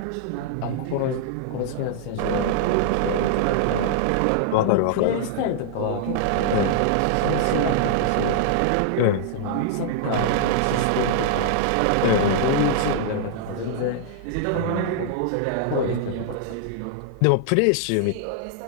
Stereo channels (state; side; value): different; both; correlation -0.01